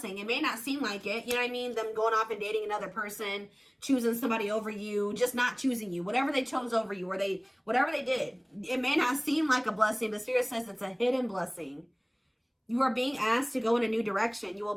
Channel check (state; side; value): identical; both; correlation 1.00